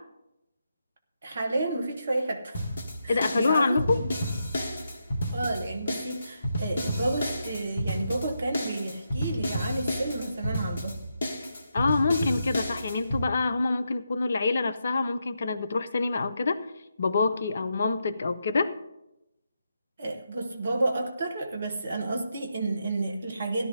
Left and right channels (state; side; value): inverted; both; correlation -0.83